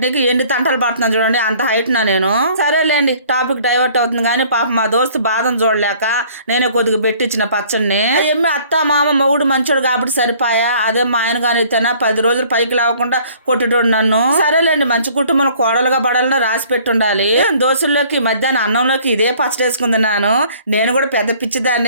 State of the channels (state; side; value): inverted; both; correlation -0.55